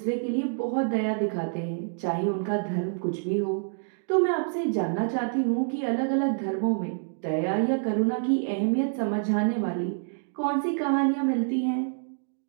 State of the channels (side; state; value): left; silent; digital silence